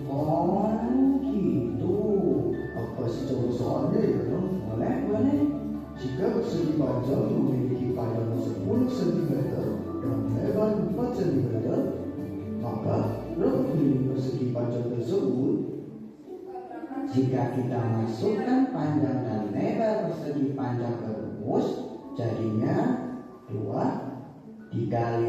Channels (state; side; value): identical; both; correlation 1.00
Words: Oh gitu. Aku kasih contoh soalnya ya. Boleh. Jika persegi panjang memiliki panjang 10 cm dan lebar 4 cm, maka berapa kali persegi panjang tersebut? Jika kita masukkan panjang dan lebar persegi panjang ke rumus, jadinya 2